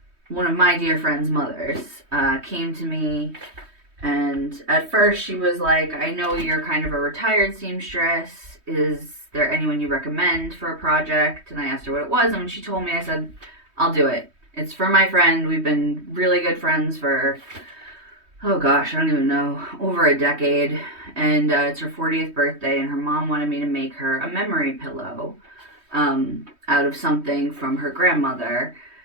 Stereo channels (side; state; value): left; late; 3.2 ms